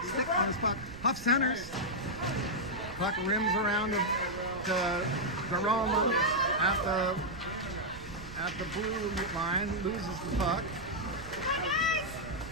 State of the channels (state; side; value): noise; right; rumble, 15 dB below the sound